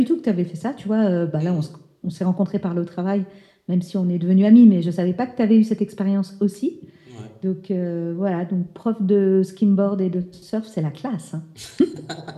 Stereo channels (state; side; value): identical; both; correlation 1.00